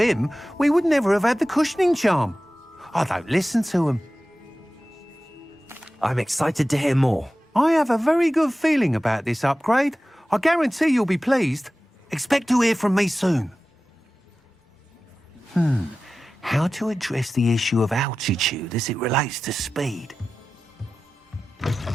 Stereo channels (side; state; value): both; normal; correlation 0.95